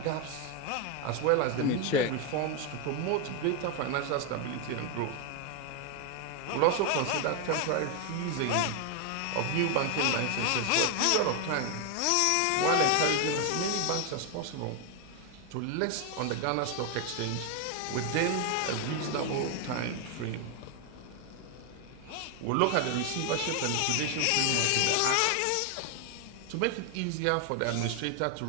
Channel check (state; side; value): different; both; correlation 0.01